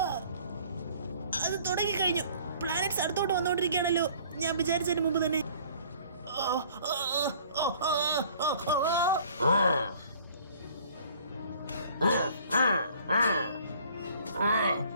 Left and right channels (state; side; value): inverted; both; correlation -0.54